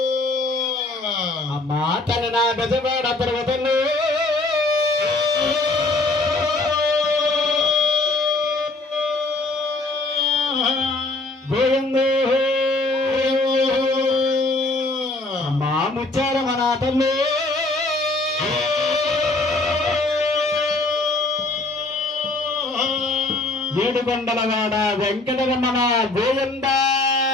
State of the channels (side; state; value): right; quieter; 3.1 dB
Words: అమ్మా తన నా గజవాడ పర్వతంలో గోవిందో అమ్మా ముచ్చారమనాథంలో ఏడుకొండలవాడ వెంకటరమణ గోవింద